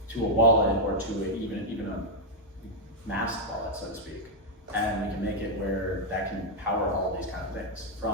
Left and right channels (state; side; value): normal; both; correlation -0.01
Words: to a wallet or to even a masked wallet, so to speak. And we can make it where that can power all these kind of things.